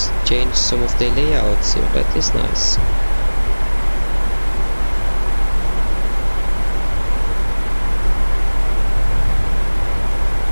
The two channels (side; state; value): both; inverted; correlation -1.00